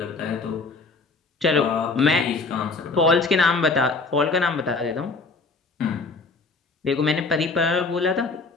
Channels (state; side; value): quieter; right; 3.9 dB